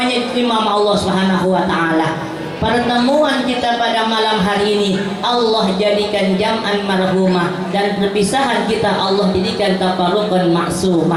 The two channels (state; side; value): identical; both; correlation 1.00